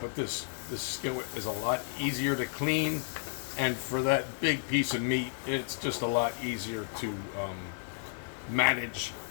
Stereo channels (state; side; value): silent; right; digital silence